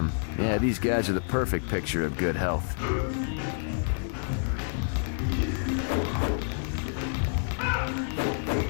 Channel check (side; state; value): right; silent; 59 dB below the other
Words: Yeah, these guys are the perfect picture of good health.